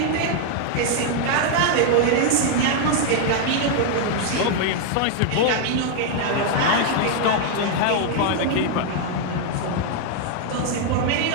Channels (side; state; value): both; different; correlation 0.00